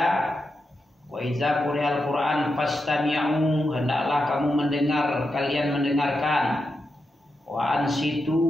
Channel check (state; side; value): normal; both; correlation 0.87